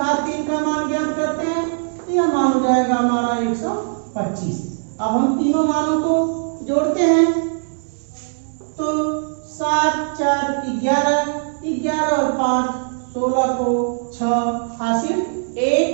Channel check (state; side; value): silent; left; digital silence